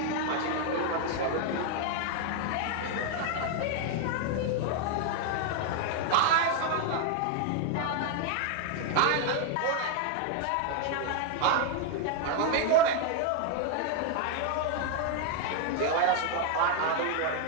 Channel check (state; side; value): different; both; correlation 0.01